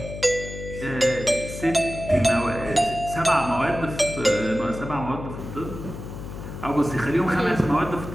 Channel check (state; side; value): noise; left; hum, 10 dB below the sound